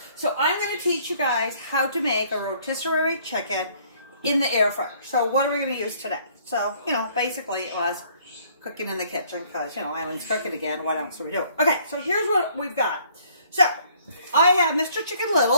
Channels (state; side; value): inverted; both; correlation -0.61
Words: so I'm going to teach you guys how to make a rotisserie chicken in the air fryer. So what are we going to use today? So, basically it was cooking in the kitchen because, Eileen's cooking again. What else are we doing? Okay, so here's what we've got. So, I have Mr. Chicken